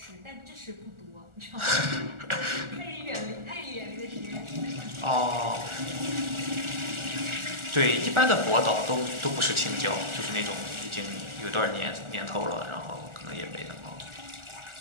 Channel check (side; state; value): left; late; 1.4 ms